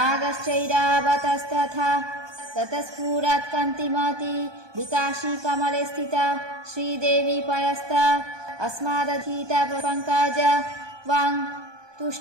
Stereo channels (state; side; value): late; left; 1.2 ms